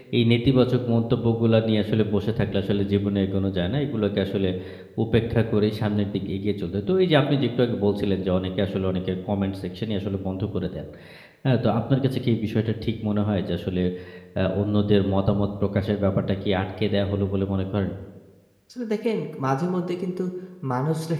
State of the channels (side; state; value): both; identical; correlation 1.00